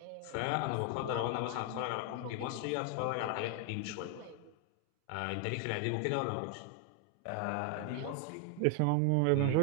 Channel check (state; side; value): different; both; correlation 0.00